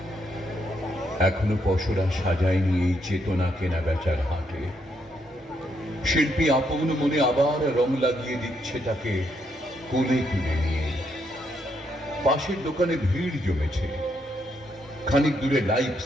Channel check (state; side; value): normal; both; correlation 0.76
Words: এখনো পশরা সাজায়নি এই চেতনা কেনা বেচার হাটে। শিল্পী আপন মনে আবার রং লাগিয়ে দিচ্ছে তাকে কোলে তুলে নিয়ে। পাশের দোকানে ভিড় জমেছে, খানিক দূরে লাইভ